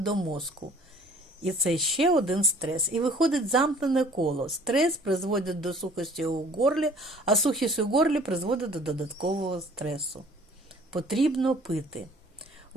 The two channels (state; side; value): normal; both; correlation 0.52